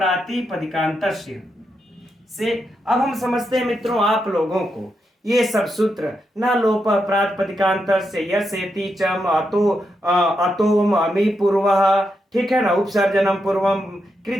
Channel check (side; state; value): both; normal; correlation 0.84